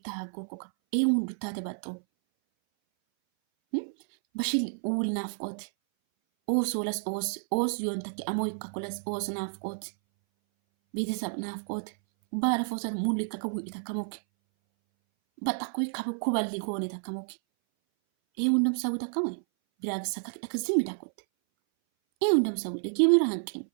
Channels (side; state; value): left; silent; 58 dB below the other